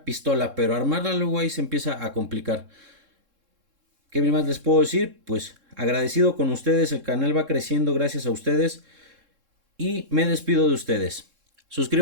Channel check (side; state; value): left; late; 3.7 ms